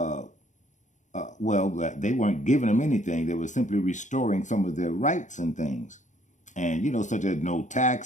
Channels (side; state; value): right; late; 0.35 ms